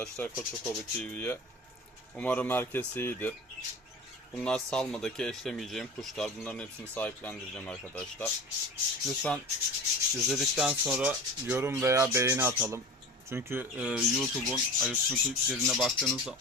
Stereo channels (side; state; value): both; normal; correlation 0.34